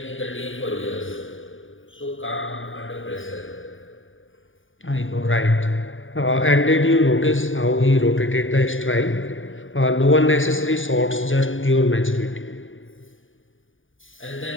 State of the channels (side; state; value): right; late; 0.57 ms